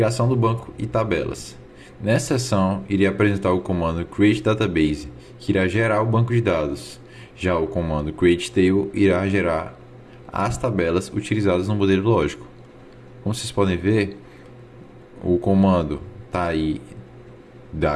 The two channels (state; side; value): identical; both; correlation 1.00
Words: do banco e tabelas. Nessa seção, irei apresentar o comando create database, que irá gerar o banco de dados. Já o comando create table irá gerar as tabelas utilizadas no modelo lógico. Como vocês podem ver, o comando está aí